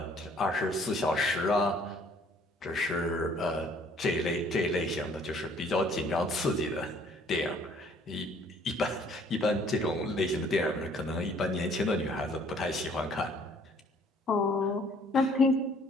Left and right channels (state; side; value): normal; both; correlation 0.59